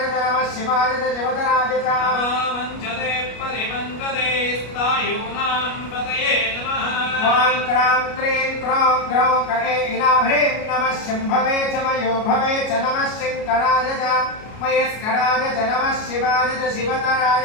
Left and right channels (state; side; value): late; right; 33 ms